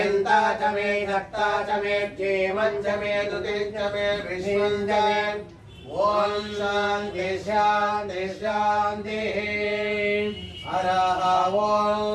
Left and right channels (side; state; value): both; identical; correlation 1.00